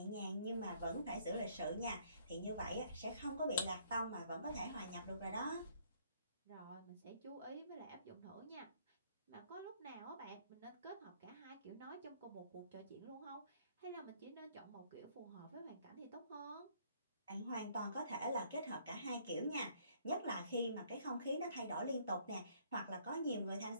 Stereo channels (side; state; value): both; inverted; correlation -0.64